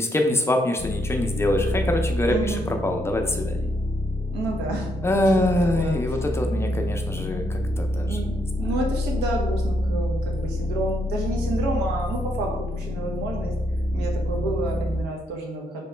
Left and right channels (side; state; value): both; normal; correlation 0.76